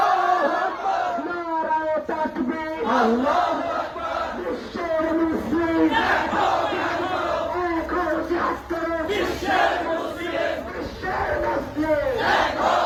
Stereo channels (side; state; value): both; identical; correlation 1.00